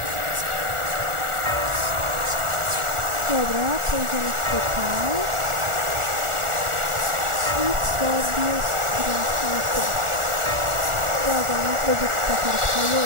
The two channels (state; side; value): late; left; 1.4 ms